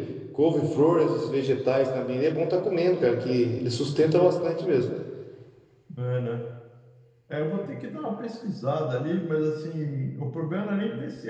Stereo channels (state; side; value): identical; both; correlation 1.00